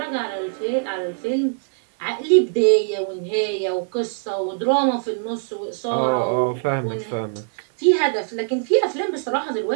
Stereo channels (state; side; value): silent; left; digital silence